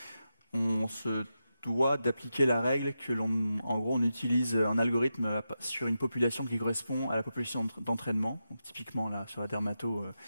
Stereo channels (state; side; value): inverted; both; correlation -0.89